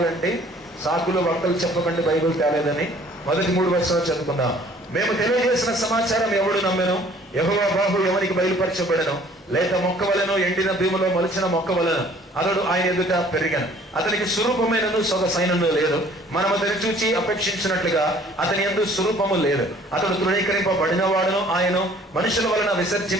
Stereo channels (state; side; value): normal; both; correlation 0.55